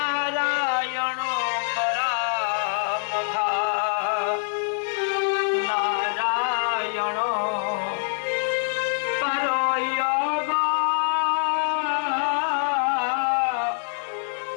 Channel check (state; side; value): silent; right; digital silence